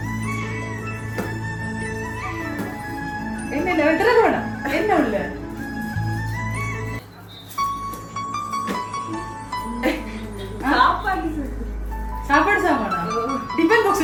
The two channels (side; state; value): both; identical; correlation 1.00